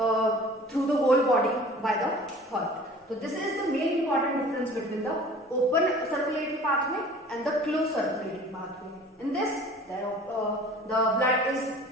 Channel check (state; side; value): normal; both; correlation 0.46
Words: through the whole body by the heart. So this is the main important difference between the open circulatory pathway and the closed circulatory pathway. In this, the blood is